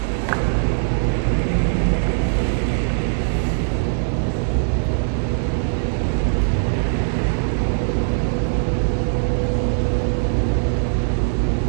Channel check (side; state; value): left; silent; digital silence